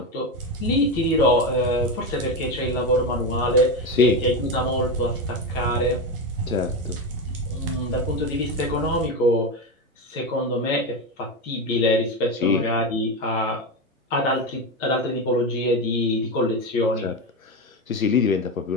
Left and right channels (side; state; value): both; normal; correlation 0.15